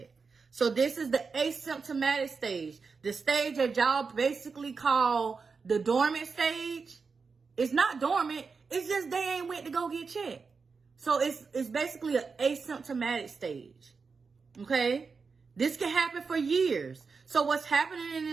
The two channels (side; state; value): left; quieter; 4.9 dB